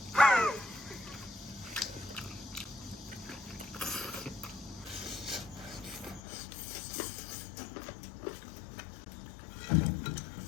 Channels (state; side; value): drops out; right; at 6.2 s